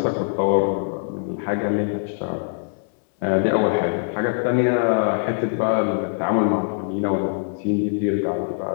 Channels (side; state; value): right; silent; 62 dB below the other